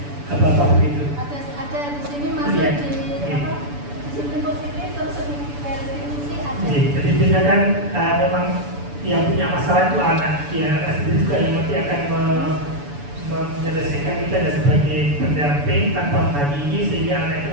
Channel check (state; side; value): late; left; 6.9 ms